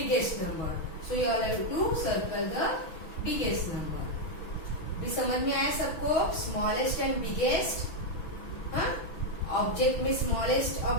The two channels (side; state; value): right; late; 6.1 ms